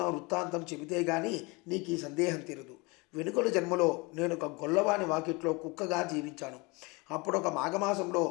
వృత్తాంతం చెబితే గాని నీకు ఈ సందేహం తీరదు. వెనుకటి జన్మలో నేను ఒక గొల్లవాని వాకిట్లో కుక్కగా జీవించాను. అప్పుడు ఒక మాఘమాసంలో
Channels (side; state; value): right; quieter; 26.8 dB